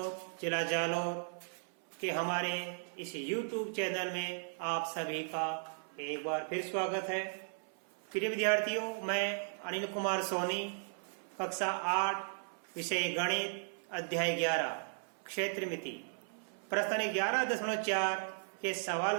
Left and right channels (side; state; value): left; silent; 54 dB below the other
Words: जिला जालौर के हमारे इस YouTube चैनल में आप सभी का एक बार फिर स्वागत है। प्रिय विद्यार्थियों, मैं अनिल कुमार सोनी, कक्षा 8, विषय गणित, अध्याय 11, क्षेत्रमिति, प्रश्न 11.4 के सवाल